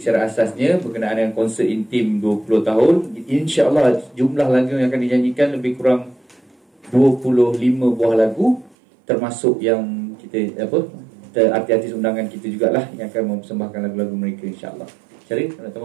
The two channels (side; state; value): left; drops out; at 8.8 s